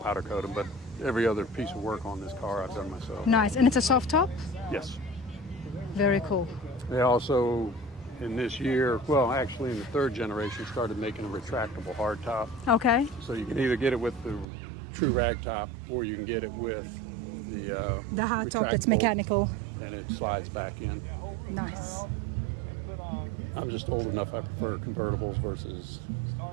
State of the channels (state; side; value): drops out; left; at 14.5 s